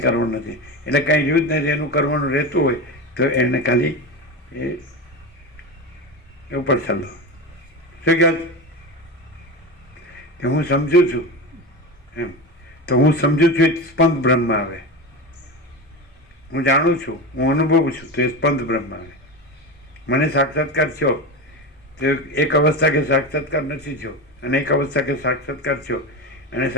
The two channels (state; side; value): normal; both; correlation 0.23